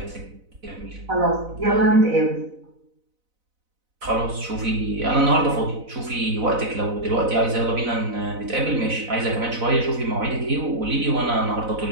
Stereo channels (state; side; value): late; left; 4.0 ms